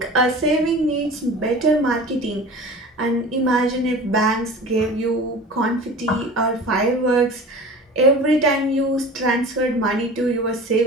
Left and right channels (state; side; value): normal; both; correlation 0.38